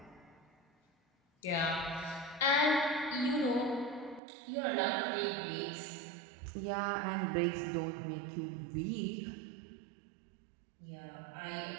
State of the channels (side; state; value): left; drops out; at 4.2 s